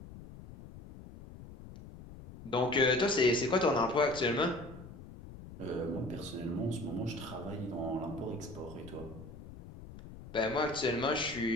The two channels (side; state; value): left; noise; rumble, 15 dB below the sound